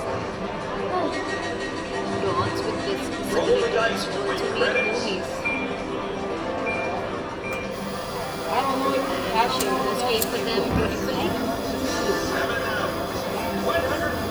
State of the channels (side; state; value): both; identical; correlation 1.00